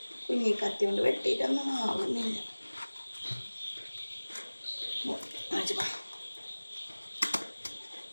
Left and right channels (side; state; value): both; inverted; correlation -1.00